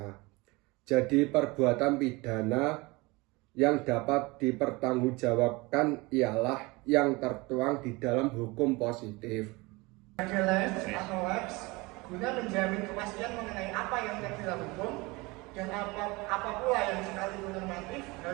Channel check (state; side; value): quieter; left; 24.1 dB